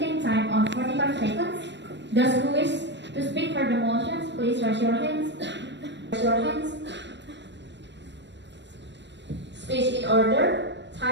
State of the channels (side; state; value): left; late; 0.52 ms